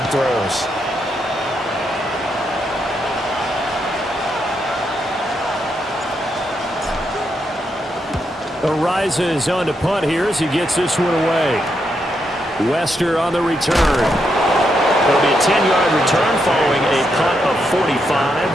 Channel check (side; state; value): both; normal; correlation 0.80